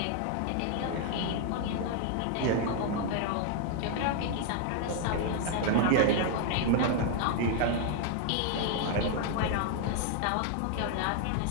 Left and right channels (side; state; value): both; different; correlation 0.00